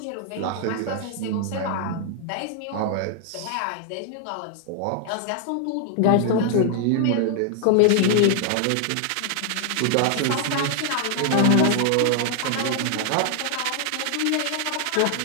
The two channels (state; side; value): different; both; correlation 0.00